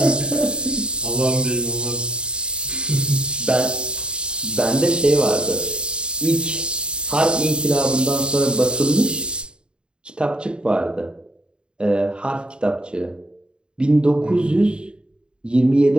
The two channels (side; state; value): left; late; 0.051 ms